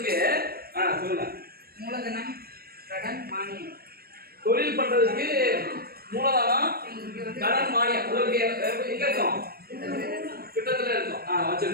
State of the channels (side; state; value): left; late; 0.44 ms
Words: சொல்லுங்க. மூலதனம், கடன், மானியம். தொழில் பண்றதுக்கு மூலதனம், கடன், மானியம் உங்களுக்கு எங்க இருக்கும்? கிட்டத்துல இருக்கும்.